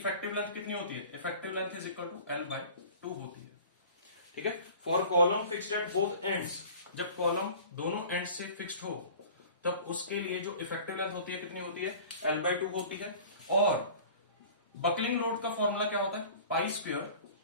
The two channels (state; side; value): inverted; both; correlation -0.43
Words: लेंथ कितनी होती है, effective length is equal to L/2 होती है। ठीक है, for column fixed at both ends, जब कॉलम दोनों एंड से फिक्स्ड हो तब उसके लिए जो इफेक्टिव लेंथ होती है कितनी होती है, L/2 होती है। और बकलिंग लोड का फॉर्मूला क्या होता है, pi square